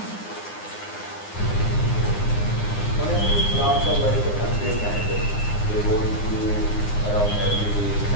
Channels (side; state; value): right; late; 9.8 ms